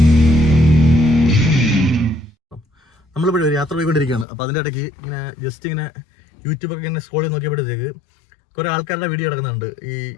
നമ്മളിപ്പോൾ ഒരു യാത്ര പോയിക്കൊണ്ടിരിക്കുകയാണ്. അപ്പോൾ അതിൻ്റെ ഇടയ്ക്ക് ഇങ്ങനെ ജസ്റ്റ് ഇങ്ങനെ യൂട്യൂബൊക്കെ ഇങ്ങനെ സ്ക്രോൾ ചെയ്ത് നോക്കിയപ്പോഴത്തേക്ക് കുറേ ആൾക്കാരുടെ വീഡിയോ കിടക്കുന്നുണ്ട്. ഈ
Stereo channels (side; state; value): right; drops out; at 4.2 s